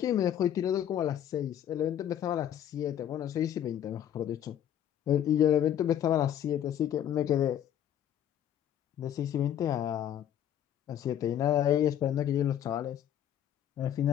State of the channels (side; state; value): right; quieter; 10.4 dB